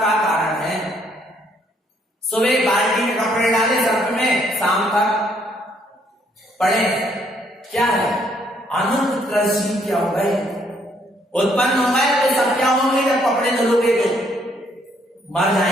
कारण है। सुबह बाल्टी में कपड़े डाले सर्फ में, शाम तक पड़े, क्या है? अनंत कृषि क्या हो गए, उत्पन्न हो गए, तो सब क्या होंगे? जब कपड़े धुलोगे तो मर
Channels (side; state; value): both; normal; correlation 0.68